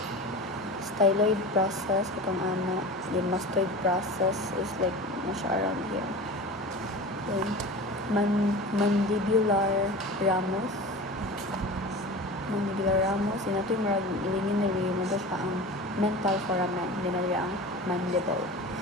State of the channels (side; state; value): both; normal; correlation 0.33